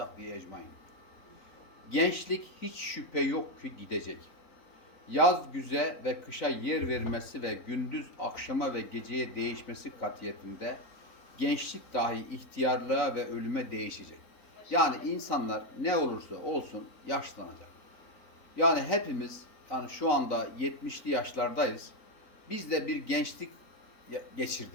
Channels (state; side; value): late; right; 3.9 ms